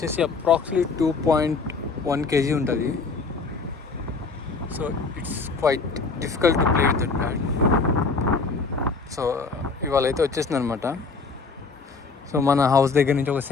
అప్రాక్సిమేట్లీ 2.1 kg ఉంటుంది. So it's quite difficult to play with that bat. So ఇవాళ అయితే వచ్చేసింది అనమాట. సో మన హౌస్ దగ్గర నుంచి ఒక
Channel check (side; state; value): right; quieter; 4.4 dB